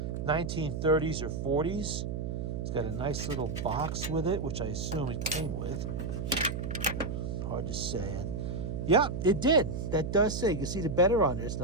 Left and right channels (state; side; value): noise; right; hum, 3 dB below the sound